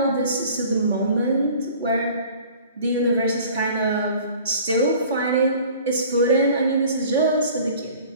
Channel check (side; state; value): both; inverted; correlation -0.48